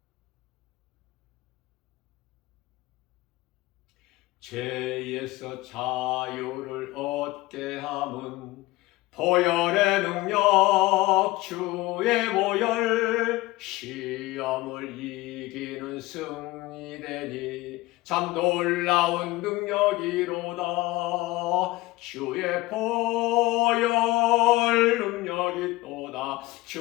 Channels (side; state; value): right; quieter; 19.6 dB